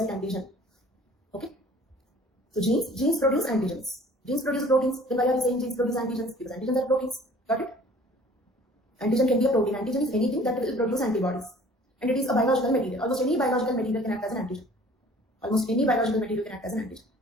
antigen. Okay. So genes produce antigens. Genes produce proteins. Then why are we saying genes produce antigens? Because antigens are proteins. Got it? Antigen can be a protein. Antigen is anything that will produce antibodies. And it is a biological material. Almost any biological material can act as an antigen. Almost any biological material can act as an antigen.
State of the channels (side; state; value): both; normal; correlation 0.51